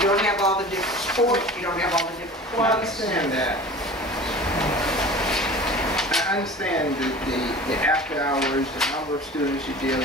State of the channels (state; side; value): normal; both; correlation 0.39